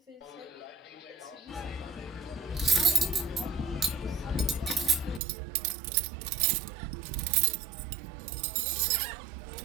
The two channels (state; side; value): drops out; left; at 5.2 s